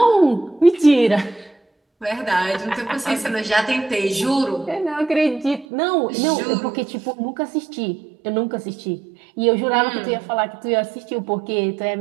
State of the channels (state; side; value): drops out; left; at 5.7 s